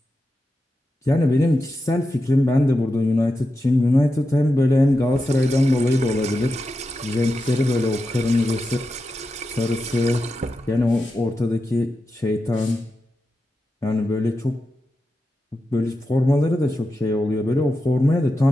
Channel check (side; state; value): both; normal; correlation 0.90